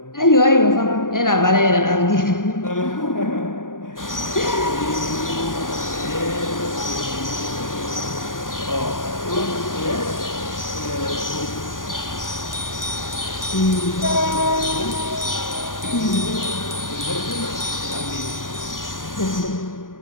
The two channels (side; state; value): right; late; 0.89 ms